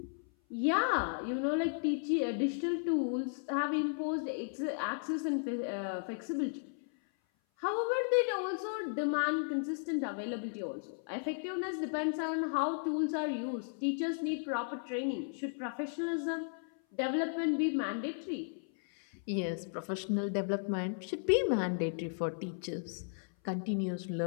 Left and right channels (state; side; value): silent; right; 54 dB below the other